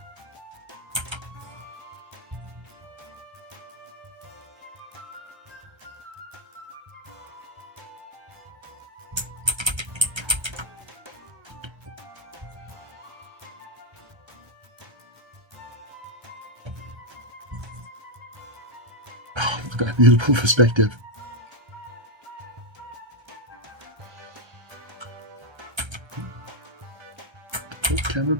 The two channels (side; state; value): left; late; 1.3 ms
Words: look at that beautiful perspective. Put camera